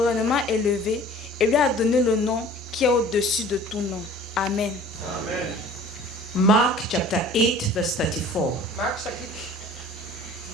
élevé et lui a donné le nom qui est au-dessus de tout nom. Amen. Amen. Mark chapter 8 verse 34.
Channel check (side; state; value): both; normal; correlation 0.47